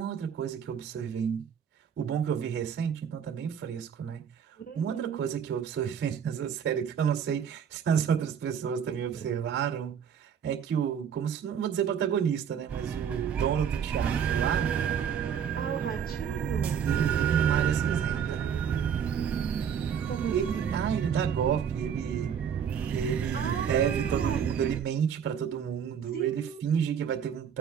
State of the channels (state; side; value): quieter; left; 7.9 dB